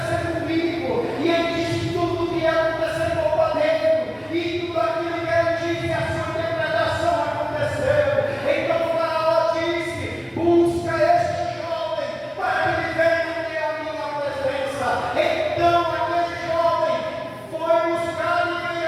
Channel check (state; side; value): identical; both; correlation 1.00